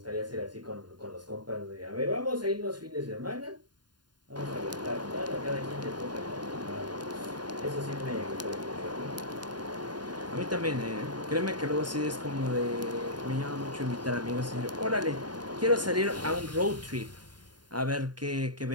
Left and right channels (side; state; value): left; late; 0.70 ms